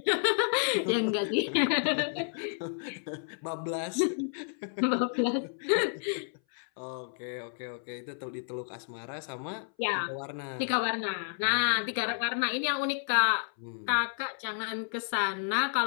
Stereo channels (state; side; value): silent; right; 57 dB below the other